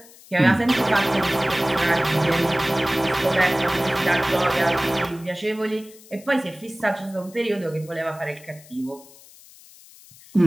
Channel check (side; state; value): left; noise; hiss, 23 dB below the sound